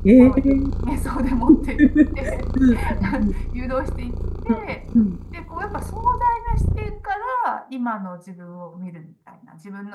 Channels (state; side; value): identical; both; correlation 1.00